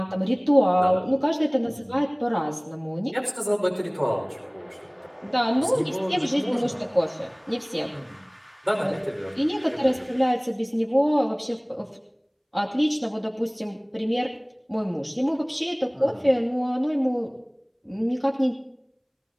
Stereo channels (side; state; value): both; identical; correlation 1.00